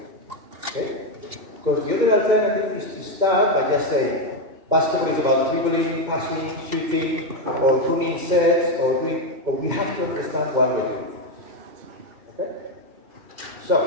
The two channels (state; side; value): late; left; 2.2 ms